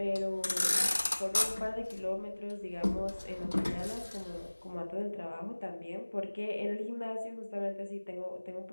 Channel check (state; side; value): inverted; both; correlation -1.00